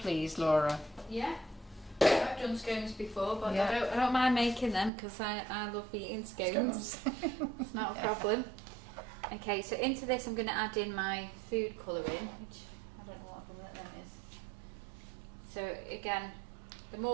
Laura? Yeah, I've done scones before, but Yeah. I don't mind making them because I love eating scones. It's not a problem. Okay, so into this I'm going to add in my food colouring, which I don't know what colour that is. So again, the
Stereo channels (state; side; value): drops out; left; at 4.9 s